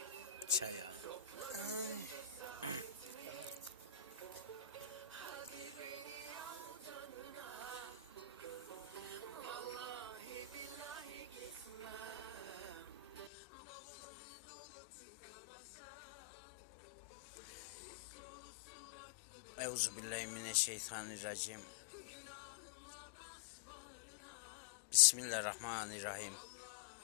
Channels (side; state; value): right; drops out; at 13.3 s